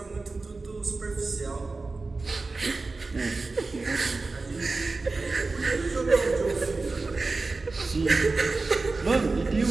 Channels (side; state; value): left; quieter; 3.7 dB